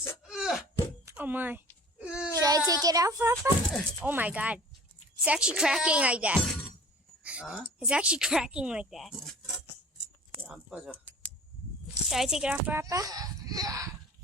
Oh my. Should I take it out, Papa? Oh my god. It's actually cracking like that. 아? It's actually cracking like that. 안 빠져. Should I take it off, Papa?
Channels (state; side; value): normal; both; correlation 0.44